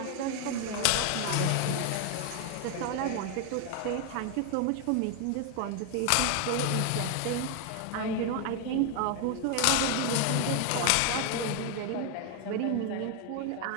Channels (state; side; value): different; both; correlation 0.01